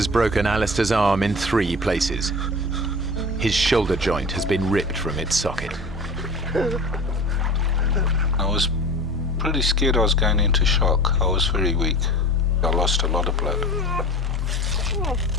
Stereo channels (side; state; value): both; normal; correlation 0.36